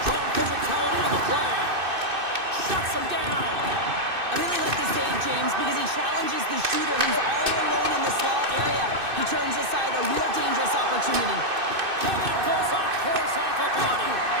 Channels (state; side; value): late; left; 2.6 ms